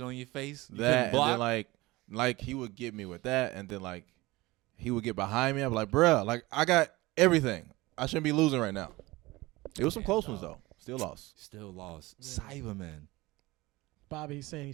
on your face. You That couldn't and block. then like he would get me with that, and then like he would get behind me. I'd be like, bruh, like I got everything. I shouldn't be losing right now. It was some close ones though. Still lost. Still lost. Yeah. Cyberman. Bobby, he's saying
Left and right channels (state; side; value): quieter; left; 20.7 dB